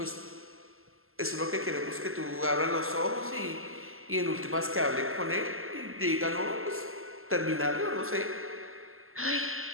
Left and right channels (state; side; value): late; left; 0.62 ms